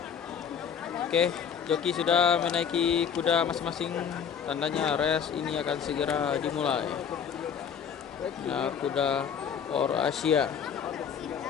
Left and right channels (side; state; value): right; quieter; 7.5 dB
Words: Oke, joki sudah menaiki kuda masing-masing. Tandanya race ini akan segera dimulai. Nah, kuda Aur Asia.